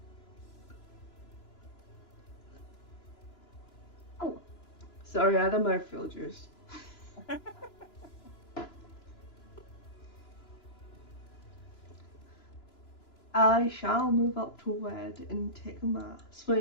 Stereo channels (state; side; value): late; right; 2.9 ms